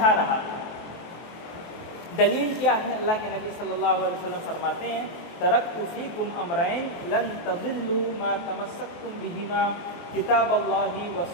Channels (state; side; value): late; right; 23 ms